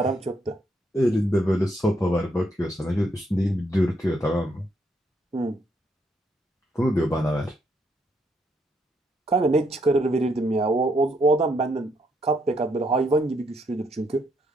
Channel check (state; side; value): normal; both; correlation 0.75